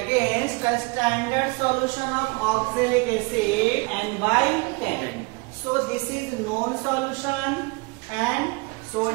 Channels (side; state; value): left; quieter; 28.5 dB